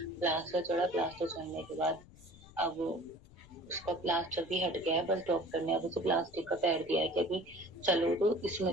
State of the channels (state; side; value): noise; left; rumble, 22 dB below the sound